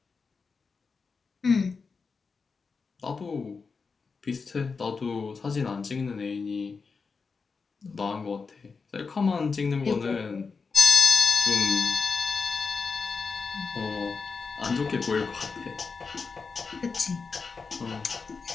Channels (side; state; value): right; quieter; 4.8 dB